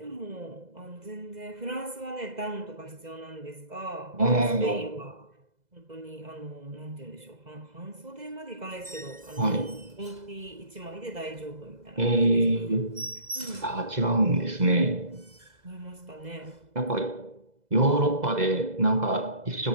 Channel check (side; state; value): left; late; 2.0 ms